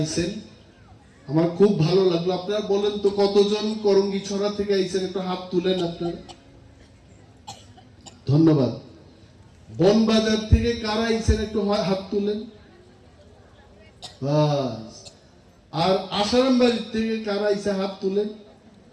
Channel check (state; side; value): identical; both; correlation 1.00